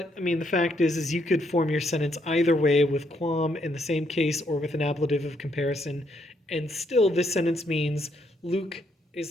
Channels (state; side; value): normal; both; correlation 0.74